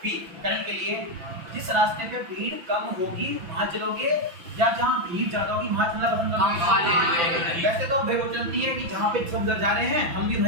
बी करंट के लिए। जिस रास्ते पे भीड़ कम होगी वहां चलोगे, या जहां भीड़ ज्यादा होगी वहां चलना पसंद करोगे। वैसे तो भीड़ चलती है कि जहां पे सब जा रहे हैं हम भी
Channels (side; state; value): left; late; 5.9 ms